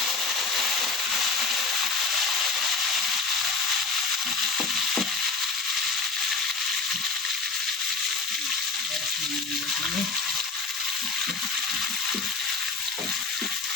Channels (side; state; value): right; quieter; 4.3 dB